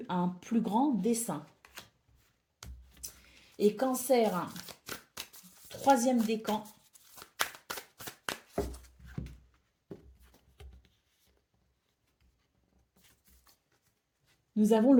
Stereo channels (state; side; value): identical; both; correlation 1.00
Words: à un plus grand dessein. Et Cancer, troisième décan. Nous avons